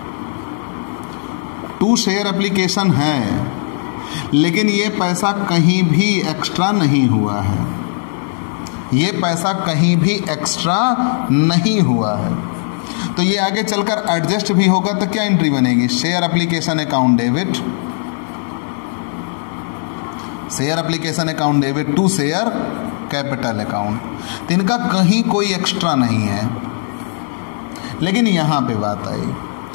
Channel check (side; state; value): right; silent; 68 dB below the other